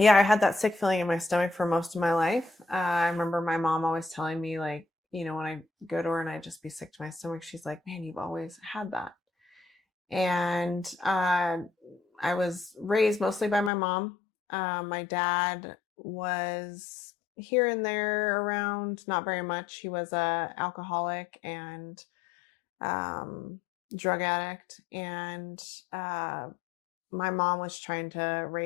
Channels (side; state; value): right; drops out; at 13.7 s